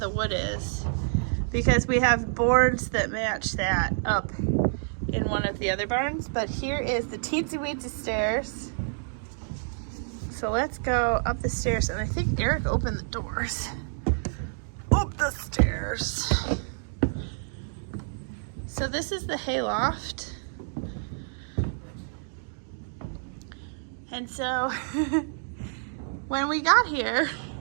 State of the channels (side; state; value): left; silent; digital silence